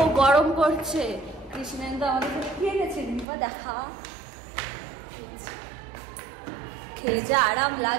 গরম করছে। কৃষ্ণেন্দু আমাদের খেয়ে গেছে, দিনবা দেখা খেয়ে যা আরাম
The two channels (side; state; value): left; drops out; at 3.2 s